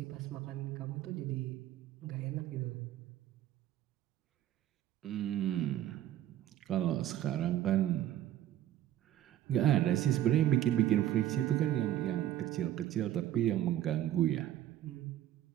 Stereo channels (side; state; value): left; quieter; 12.4 dB